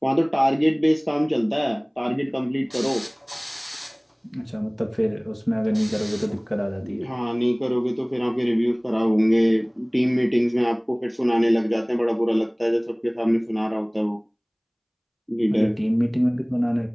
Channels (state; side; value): identical; both; correlation 1.00